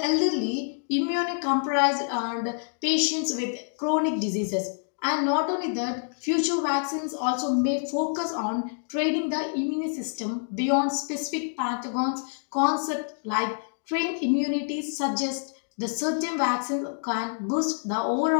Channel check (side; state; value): right; silent; digital silence